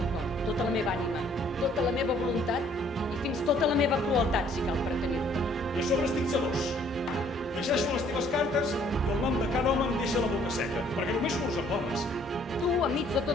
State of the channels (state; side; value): normal; both; correlation 0.61